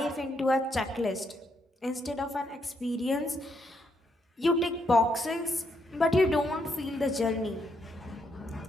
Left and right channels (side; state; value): both; normal; correlation 0.76